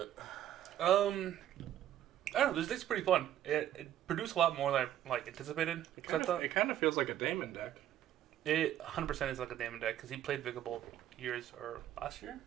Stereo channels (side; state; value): left; quieter; 11.8 dB